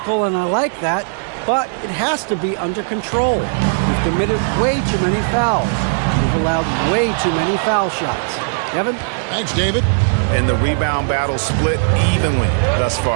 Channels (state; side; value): silent; left; 66 dB below the other